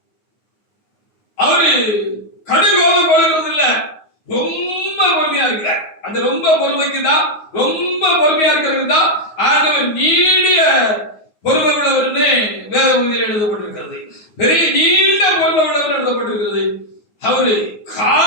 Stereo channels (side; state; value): right; late; 9.5 ms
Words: அவரு கடுங்கோபம் கொள்கிறது இல்ல, ரொம்ப பொறுமையா இருக்கிறார். அந்த ரொம்ப பொறுமைக்கு தான், ரொம்ப பொறுமையா இருக்கிறது தான் ஆண்டவர் நீடிய பொறுமை உள்ளவர்னு வேத பகுதியில் எழுதப்பட்டிருக்கிறது. பெரிய நீண்ட பொறுமை உள்ளவர் எழுதப்பட்டிருக்கிறது. அவரு